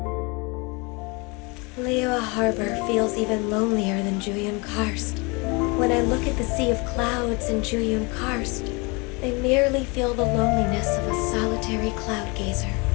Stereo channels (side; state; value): right; quieter; 28.8 dB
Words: Liyue Harbor feels even lonelier than Juyun Karst. When I look at the sea of clouds in Juyun Karst, I merely feel the loneliness of a solitary cloud gazer.